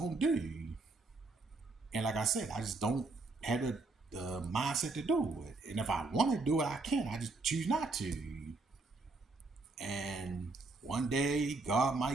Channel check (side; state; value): left; quieter; 3.5 dB